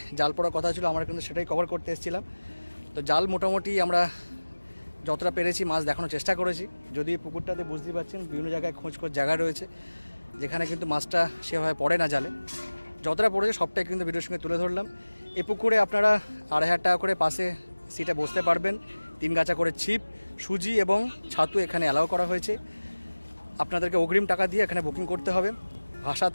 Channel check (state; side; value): inverted; both; correlation -1.00